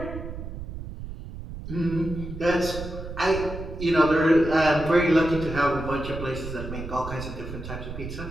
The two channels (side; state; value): right; noise; rumble, 9 dB below the sound